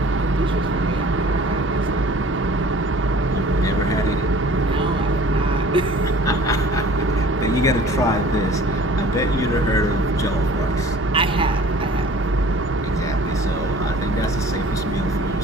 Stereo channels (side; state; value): both; normal; correlation 0.48